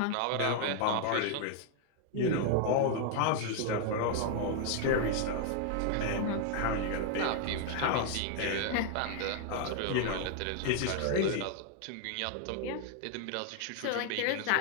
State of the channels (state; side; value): different; both; correlation 0.00